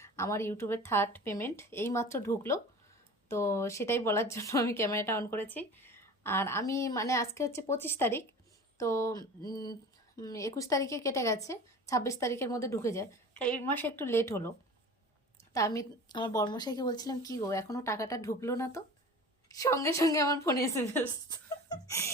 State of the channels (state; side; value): normal; both; correlation 0.38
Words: আমার ইউটিউবের থার্ড পেমেন্ট এইমাত্র ঢুকলো। তো সেটাই বলার জন্য আমি ক্যামেরাটা অন করেছি। আর আমি মানে আজকে হচ্ছে 25 তারিখ। তো 21 তারিখে কেটে গেছে, 26 তারিখের মধ্যে ঢুকে যায়। তাই এই মাসে একটু লেট হলো। তা আমি আমার বর্মশাইকে বলছিলাম, কি গো, এখনও টাকাটা ঢুকলো না তো? সঙ্গে সঙ্গে আমার ফোনে SMS.